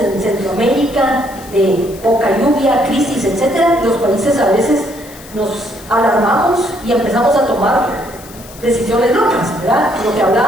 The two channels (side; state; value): left; noise; hiss, 19 dB below the sound